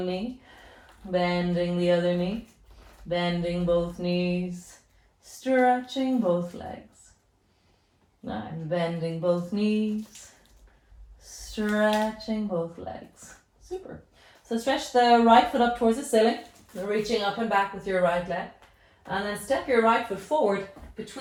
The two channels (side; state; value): both; identical; correlation 1.00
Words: knee, bending the other knee, bending both knees, stretching both legs. And bending both knees, stretching both legs. Super. So stretch the right foot up towards the ceiling, reaching up and back with your right leg. And then step your right foot forward